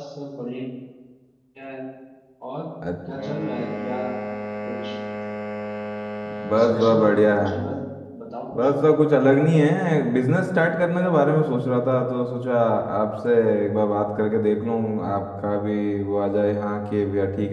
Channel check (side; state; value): both; identical; correlation 1.00